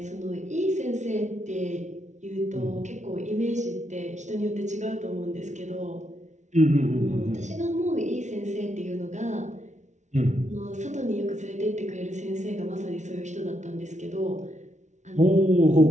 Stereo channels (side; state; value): left; late; 0.34 ms